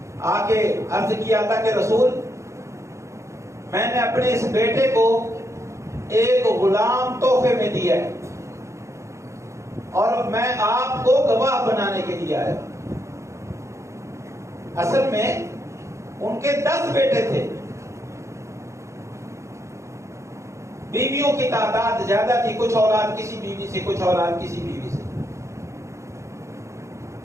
آگے عرض کیا اللہ کے رسول، میں نے اپنے اس بیٹے کو ایک غلام تحفے میں دیا ہے اور میں آپ کو گواہ بنانے کے لیے آیا۔ اصل میں ان کے 10 بیٹے تھے، بیویوں کی تعداد زیادہ تھی، کچھ اولاد کسی بیوی سے، کچھ اولاد کسی بیوی سے۔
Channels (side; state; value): left; late; 0.14 ms